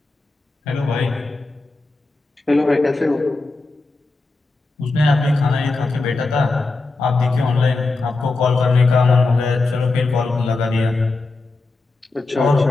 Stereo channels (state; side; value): quieter; right; 3.5 dB